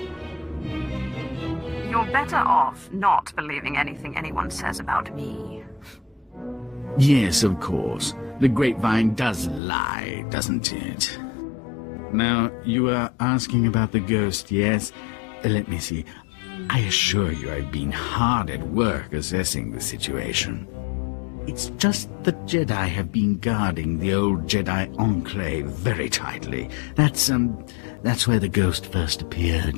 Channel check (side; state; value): right; drops out; at 9.6 s